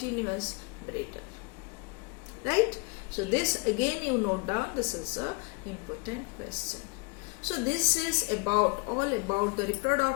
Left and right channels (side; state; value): right; quieter; 30.1 dB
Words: breeder. right? So this again you note down, this is a important question. So this is all about the